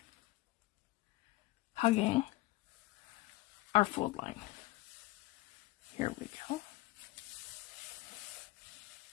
hugging our fold line. Here we go.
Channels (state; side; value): quieter; right; 19.8 dB